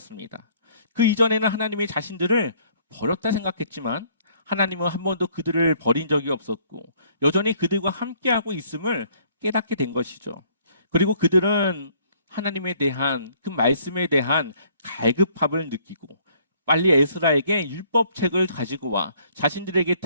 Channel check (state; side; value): inverted; both; correlation -0.62